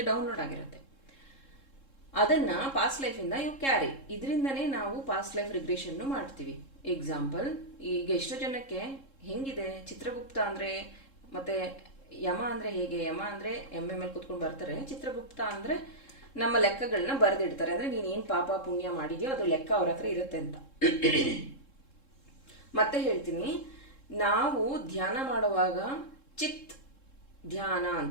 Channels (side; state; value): right; late; 3.7 ms